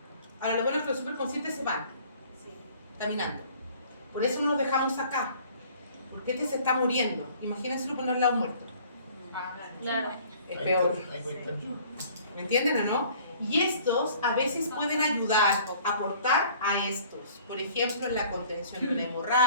Ahora los buenos con los superconscientes se van, caminando. Por eso no los dejamos acá. Porque este se está muriendo. Imagínense ponerle al lado muerto. Claro. Es peor. ¿Me entienden o no? Y estos a veces pueden ayudar, aportar a estos. Por ejemplo, en la contención de una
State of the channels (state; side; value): inverted; both; correlation -0.53